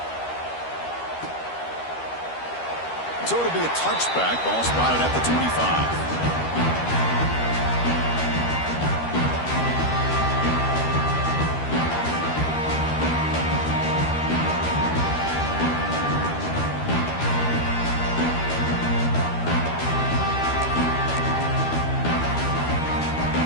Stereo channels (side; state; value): right; late; 13 ms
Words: So it'll be a touchback. Ball spotted at the 25.